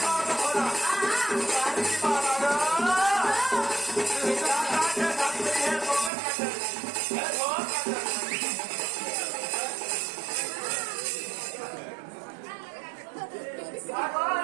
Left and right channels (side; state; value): left; drops out; at 6.1 s